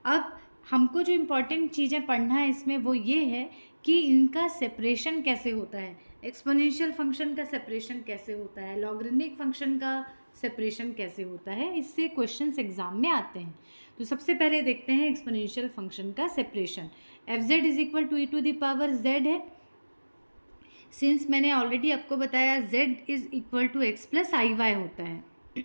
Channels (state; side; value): inverted; both; correlation -1.00